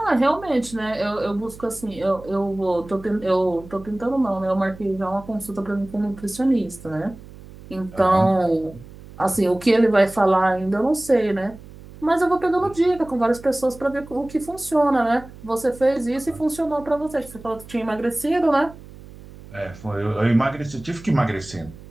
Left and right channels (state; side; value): noise; right; hum, 18 dB below the sound